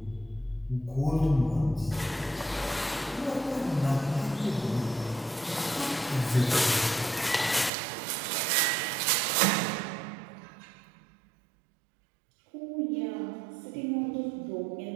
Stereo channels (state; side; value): drops out; left; at 7.7 s